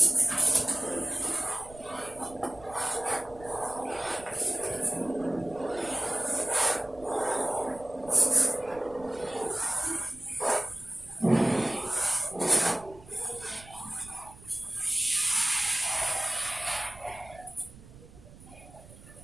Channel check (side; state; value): right; noise; rumble, 20 dB below the sound